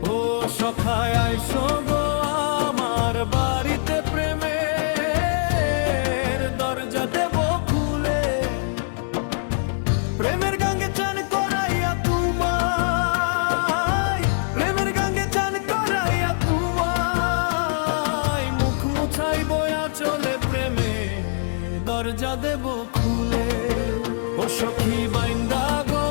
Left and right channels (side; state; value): right; silent; digital silence